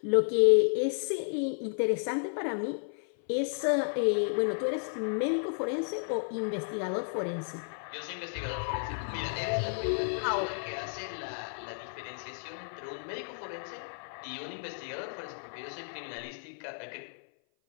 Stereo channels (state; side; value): silent; right; 56 dB below the other